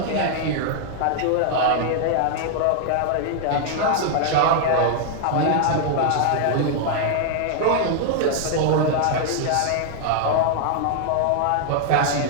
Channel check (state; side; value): different; both; correlation -0.01